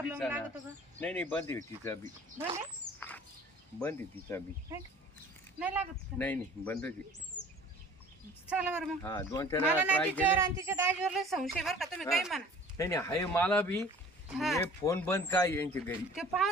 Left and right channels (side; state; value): both; normal; correlation 0.47